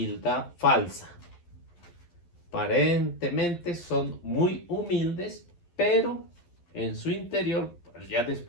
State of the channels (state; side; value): late; right; 11 ms